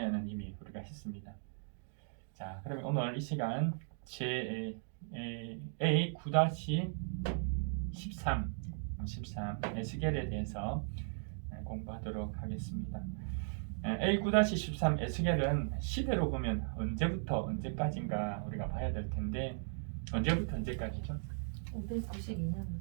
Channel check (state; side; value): silent; left; digital silence